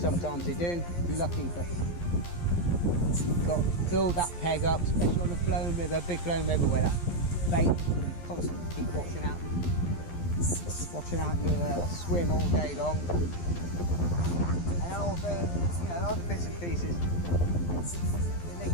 they do, you're lucky, but you've got to build that peg up, especially on a flowing river, big flowing river where that bait can constantly keep washing out your swim all day long. And also, you know, other bits and pieces. The link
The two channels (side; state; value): right; late; 12 ms